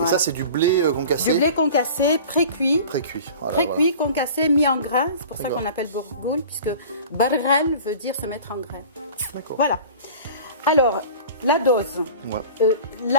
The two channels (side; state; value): both; inverted; correlation -0.41